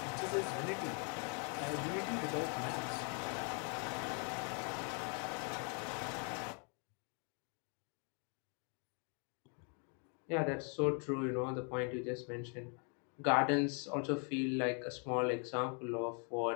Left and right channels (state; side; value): quieter; right; 38.7 dB